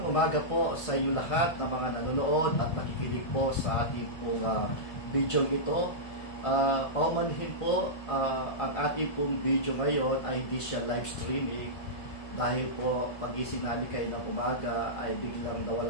umaga po sa inyo lahat ng mga nanonood at nakikinig po sa ating pong video ito. Paumanhin po, ang ating pong video ngayon ay hindi siya live streaming dahil po pagising namin kayo ng umaga ay biglang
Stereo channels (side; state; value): right; late; 1.7 ms